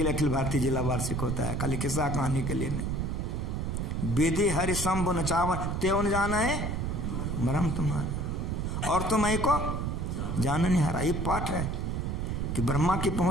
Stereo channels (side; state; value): right; noise; rumble, 1 dB below the sound